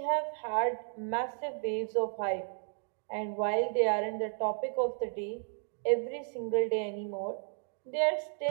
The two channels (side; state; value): left; silent; 56 dB below the other